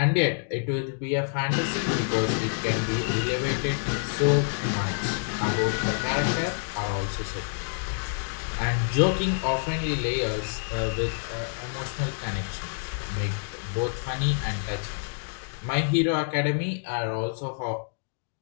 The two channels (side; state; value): right; silent; digital silence